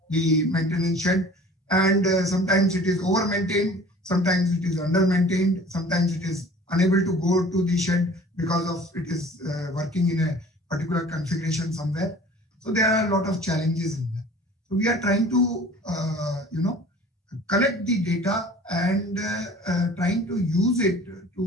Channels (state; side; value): normal; both; correlation 0.46